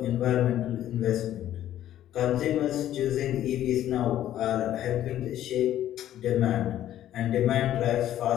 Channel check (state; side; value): quieter; right; 12.2 dB